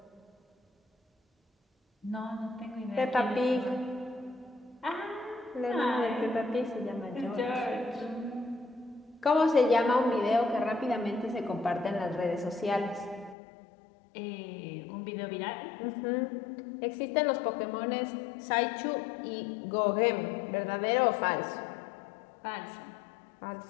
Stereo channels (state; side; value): drops out; right; at 13.4 s